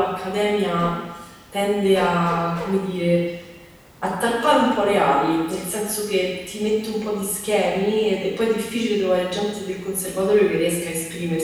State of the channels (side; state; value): both; identical; correlation 1.00